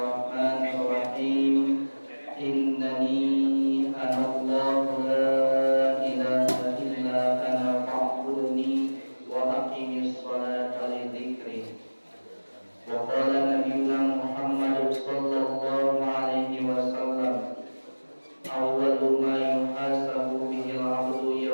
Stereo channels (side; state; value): both; inverted; correlation -1.00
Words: Innani anallahu la ilaha illa ana fa'budni wa aqimis salata li dzikri. Wa qala nabiyyuna Muhammad sallallahu alaihi wasallam, awwalu ma yuhasabu bihi al-'abdu